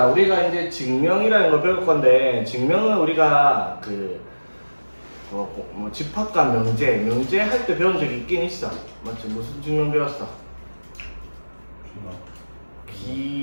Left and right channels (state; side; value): inverted; both; correlation -1.00